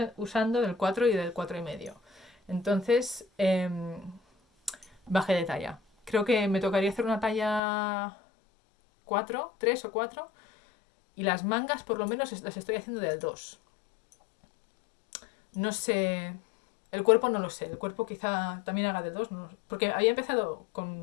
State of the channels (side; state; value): right; drops out; at 7.6 s